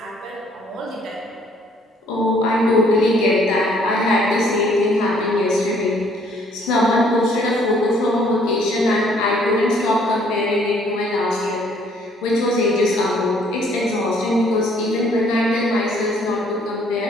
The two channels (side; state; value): both; normal; correlation 0.62